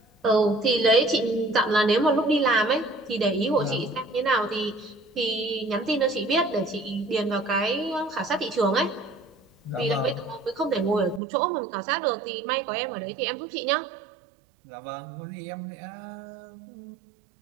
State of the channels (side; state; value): left; drops out; at 11.2 s